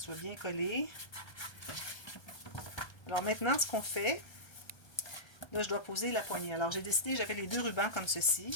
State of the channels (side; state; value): right; late; 1.3 ms